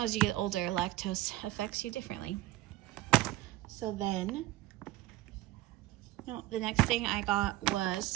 as you get older, lactose affects you differently. So then, the next thing I got was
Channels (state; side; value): quieter; left; 16.5 dB